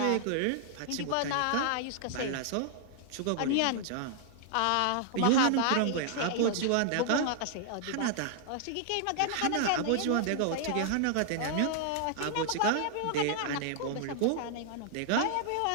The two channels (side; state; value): both; different; correlation -0.01